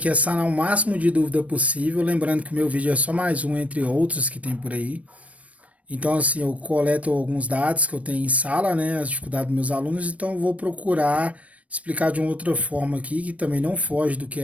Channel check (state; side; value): late; left; 0.066 ms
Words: é sanar o máximo de dúvida possível, lembrando que o meu vídeo é só mais um entre outros que tem por aí. Então, assim, eu coleto alguns dados que eu tenho em sala, né? As dificuldades dos meus alunos, então eu vou procurar explicar de uma outra forma aqui, que também não foge do que